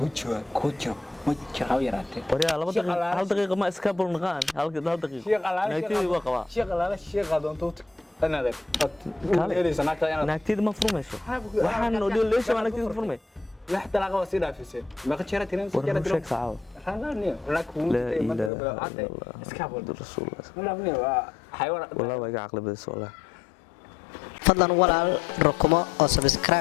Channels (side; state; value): right; drops out; at 18.5 s